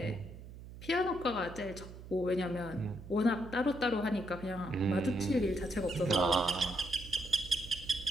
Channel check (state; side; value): noise; right; hum, 14 dB below the sound